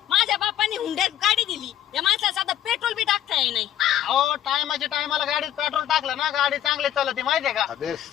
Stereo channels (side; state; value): right; quieter; 11.4 dB